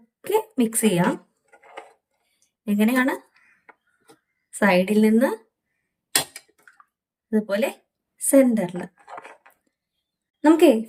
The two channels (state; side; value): identical; both; correlation 1.00